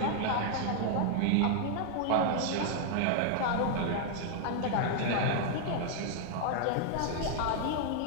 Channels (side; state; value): both; different; correlation 0.00